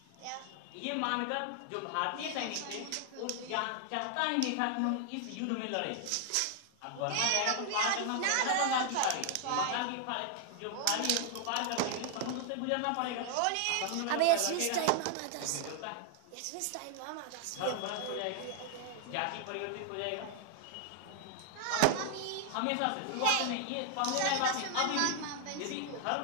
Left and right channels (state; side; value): different; both; correlation 0.00